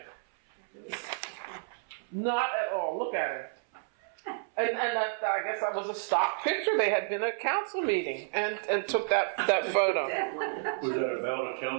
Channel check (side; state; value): left; silent; 57 dB below the other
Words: Not at all. Look at it. And that, I guess that was a stock picture. They had been at a council meeting and took that photo. Was that about a